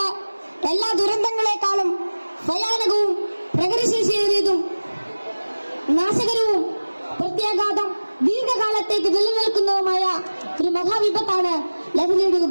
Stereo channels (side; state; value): both; inverted; correlation -1.00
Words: എല്ലാ ദുരന്തങ്ങളെക്കാളും ഭയാനകവും പ്രകൃതിശേഷിയേറിയതും നാശകരവും പ്രത്യാഘാതം ദീർഘകാലത്തേക്ക് നിലനിൽക്കുന്നതുമായ ഒരു മഹാവിപത്താണ് ലഹരിയുടെ